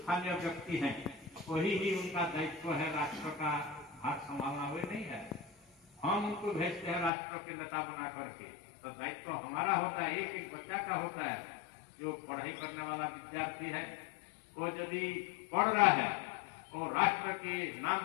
व्यक्ति हैं वही ही उनका दायित्व है राष्ट्र का भाग संभालना, हुए नहीं है। हम उनको भेजते हैं राष्ट्र के नेता बना करके, तो दायित्व हमारा होता है, एक एक बच्चा का होता है। जो पढ़ाई करने वाला विद्यार्थी है वो यदि पढ़ रहा है वो राष्ट्र के नाम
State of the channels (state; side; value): drops out; right; at 7.1 s